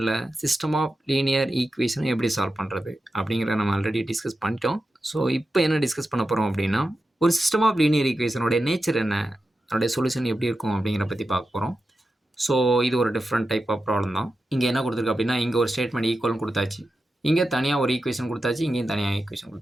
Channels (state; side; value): normal; both; correlation 0.91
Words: சிஸ்டம் ஆஃப் லீனியர் ஈக்குவேஷனை எப்படி சால்வ் பண்ணுறது அப்படிங்கிறத நம்ம ஆல்ரெடி டிஸ்கஸ் பண்ணிட்டோம். ஸோ இப்போ என்ன டிஸ்கஸ் பண்ண போகிறோம் அப்படின்னா ஒரு சிஸ்டம் ஆஃப் லீனியர் ஈக்குவேஷனோட நேச்சர் என்ன, அதோடைய சொல்யூஷன் எப்படி இருக்கும் அப்படிங்கிற பற்றி பார்க்க போகிறோம். ஸோ இது ஒரு டிஃப்ரெண்ட் டைப் ஆஃப் ப்ராப்ளம் தான். இங்கே என்ன கொடுத்துருக்கு அப்படின்னா இங்கே ஒரு ஸ்டேட்மெண்ட் ஈக்குவல்னு கொடுத்தாச்சு, இங்கே தனியாக ஒரு ஈக்குவேஷன் கொடுத்தாச்சு, இங்கேயும் தனியாக ஈக்குவேஷன்